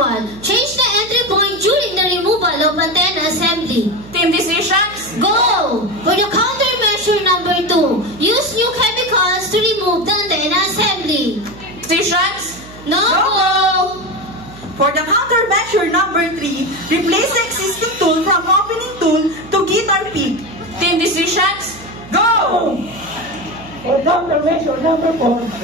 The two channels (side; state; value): right; noise; hum, 18 dB below the sound